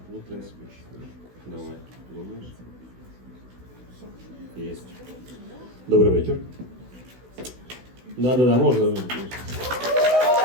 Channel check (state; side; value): late; left; 16 ms